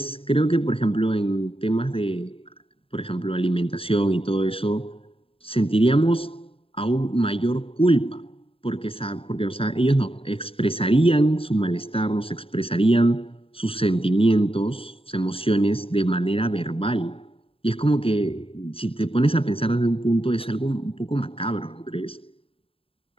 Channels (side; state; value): right; late; 0.27 ms